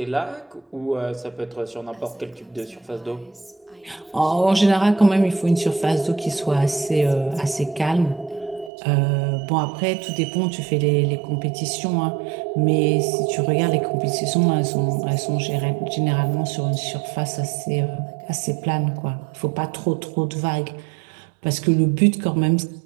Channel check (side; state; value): left; drops out; at 8.7 s